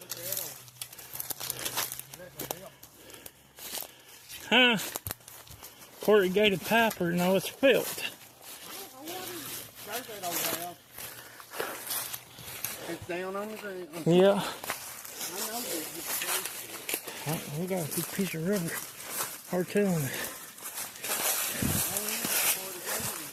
at them. Huh? Corrugated pipe, or no, it's felt. It's down on the ground. Yeah. I know this. We got a big piece of rubber. Hard telling it.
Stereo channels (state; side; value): identical; both; correlation 1.00